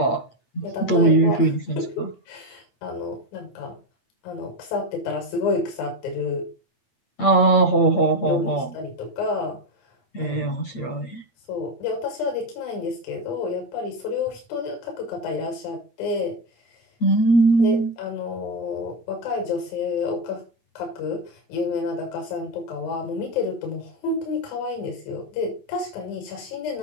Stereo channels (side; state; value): right; late; 8.6 ms